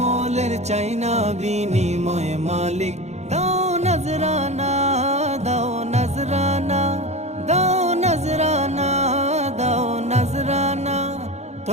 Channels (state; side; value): late; left; 0.32 ms